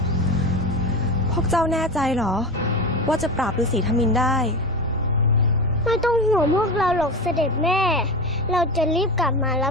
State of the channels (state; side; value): normal; both; correlation 0.24